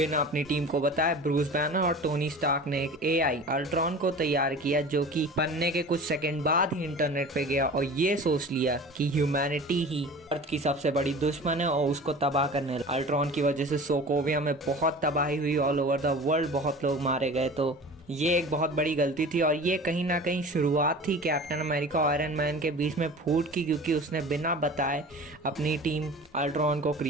अपनी टीम को बताए। ब्रूस बैनर और टोनी स्टार्क ने एक एआई अल्ट्रॉन को तैयार किया जो कि बनने के कुछ सेकंड बाद ही इंटरनेट पे गया और ये सोच लिया कि ह्यूमैनिटी ही अर्थ की सबसे बड़ी दुश्मन है और उसको तबाह करने लगा। अल्ट्रॉन की वजह से सोकोविया में बहुत तबाही हुई, ऑल ओवर द वर्ल्ड बहुत लोग मारे गए। तो ये एक बहुत बड़ी गलती थी और ये कहीं ना कहीं शुरुआत थी कैप्टन अमेरिका और आयरन मैन के बीच में फूट की, क्योंकि उसने बिना बताए अपनी टीम अल्ट्रॉन को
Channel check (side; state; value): both; normal; correlation 0.39